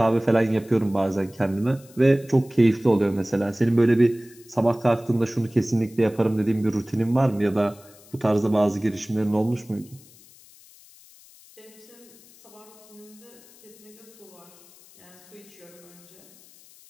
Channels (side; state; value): left; noise; hiss, 24 dB below the sound